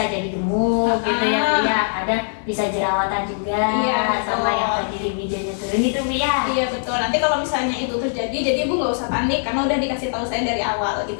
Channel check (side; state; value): right; silent; digital silence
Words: jadi gemuk gitu ya bu ya, ada bisa jerawatan juga, sama yang tadi libidonya turun gitu bu ya. Iya betul. Nanti kalau misalnya itu terjadi, jadi ibu nggak usah panik karena udah dikasih tahu saya dari awal gitu